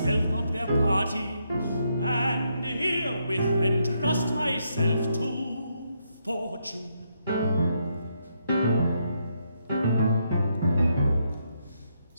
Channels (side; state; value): both; inverted; correlation -0.77